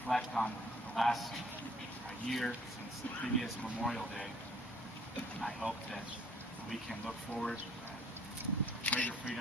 on the last year since the previous Memorial Day, I hope that we can look forward to greater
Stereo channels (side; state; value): both; normal; correlation 0.58